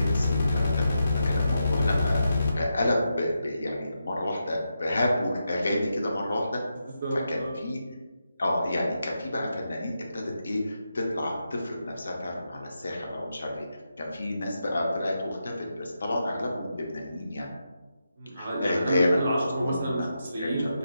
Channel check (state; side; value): inverted; both; correlation -0.86